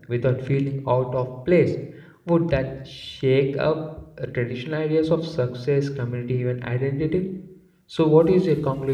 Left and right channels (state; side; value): identical; both; correlation 1.00